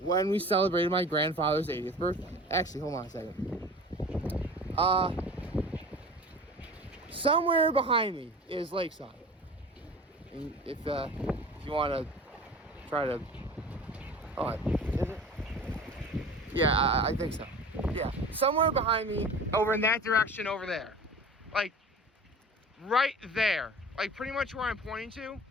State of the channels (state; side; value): normal; both; correlation 0.39